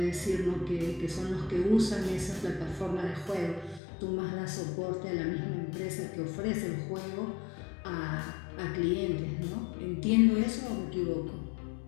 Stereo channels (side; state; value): right; drops out; at 3.8 s